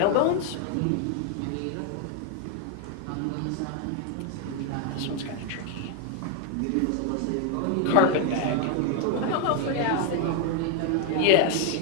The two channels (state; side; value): different; both; correlation 0.01